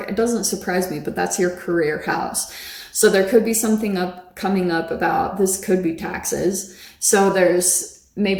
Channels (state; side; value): identical; both; correlation 1.00